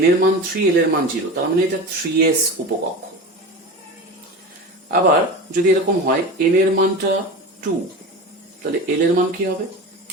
n এর মান 3, l এর মান 0, তার মানে এটা 3s উপকক্ষ। আবার যদি এরকম হয় n এর মানটা 2, তাহলে l এর মান কি হবে?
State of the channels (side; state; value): both; normal; correlation 0.29